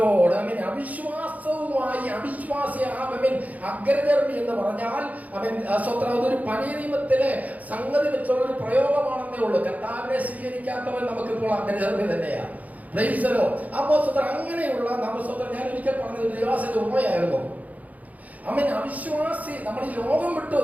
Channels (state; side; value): late; left; 0.076 ms